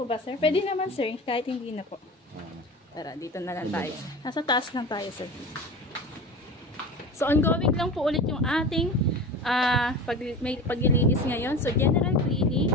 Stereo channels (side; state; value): both; normal; correlation 0.33